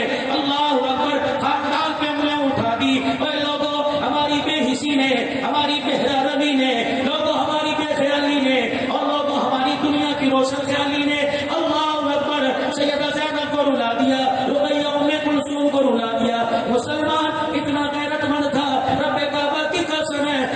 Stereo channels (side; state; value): both; identical; correlation 1.00